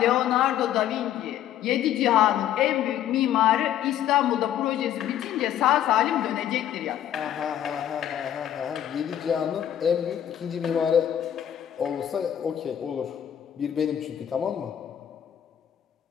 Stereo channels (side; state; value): right; quieter; 10.7 dB